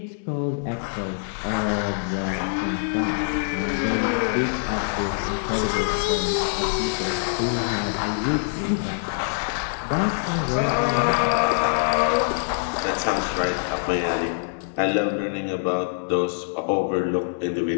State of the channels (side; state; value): right; silent; digital silence